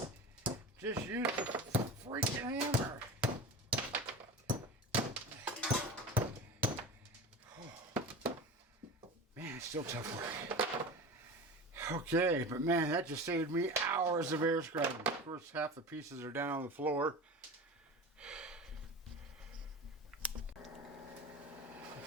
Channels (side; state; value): both; normal; correlation 0.31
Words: just use the freaking hammer. it's still tough work. Okay, but man, that just saved me hours of air scrubbing. Of course, half the pieces are down on the floor.